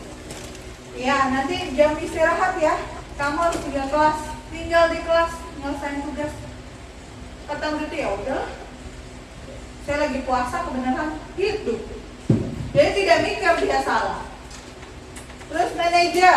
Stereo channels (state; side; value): identical; both; correlation 1.00